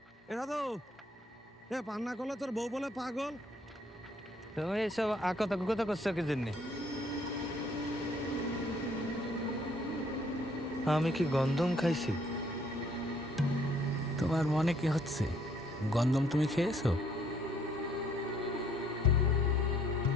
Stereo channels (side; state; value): both; normal; correlation 0.64